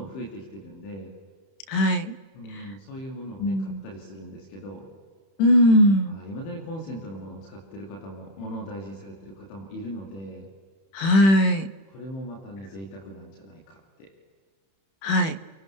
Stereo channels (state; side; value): late; right; 31 ms